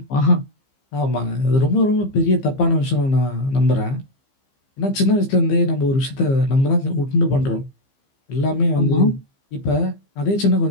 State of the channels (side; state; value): right; late; 15 ms